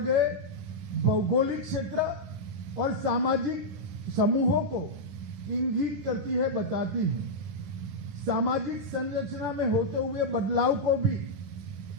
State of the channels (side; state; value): left; late; 10 ms